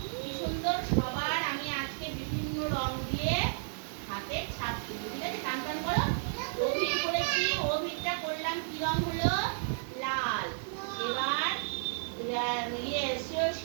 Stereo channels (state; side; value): silent; left; 56 dB below the other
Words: কি সুন্দর সবার আমি আজকে বিভিন্ন রং দিয়ে হাতে ছাপ দেবো। ঠিক আছে, টান টান করো। অভির করেছি, অভিরটা করলাম কি রং হলো? লাল। এবার